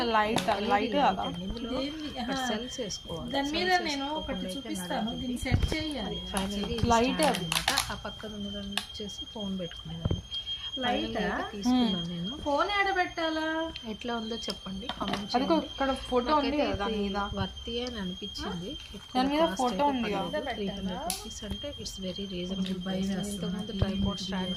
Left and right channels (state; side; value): identical; both; correlation 1.00